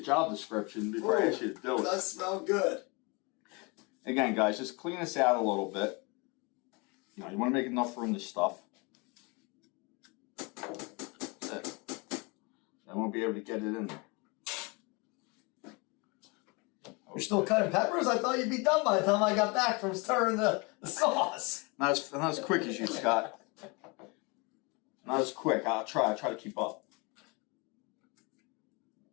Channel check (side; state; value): right; quieter; 29.0 dB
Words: job description before I ask you to do It it. does smell good. Again, guys, just clean this out a little bit. You know, you want to make enough room to stuff. That's it. I won't be able to get it in there. You're still cutting peppers? I thought you'd be done by the time I got back from stirring the sauce. Not as quick as you, Scott. Not as quick. I'll try to keep up.